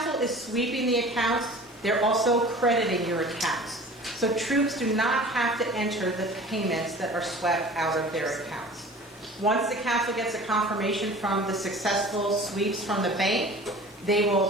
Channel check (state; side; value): normal; both; correlation 0.42